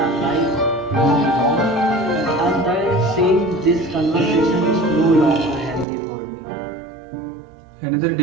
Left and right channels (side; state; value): left; drops out; at 5.9 s